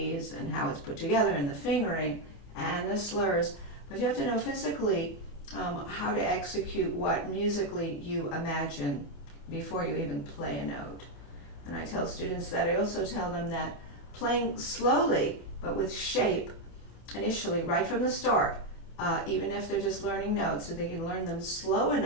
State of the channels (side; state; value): right; late; 28 ms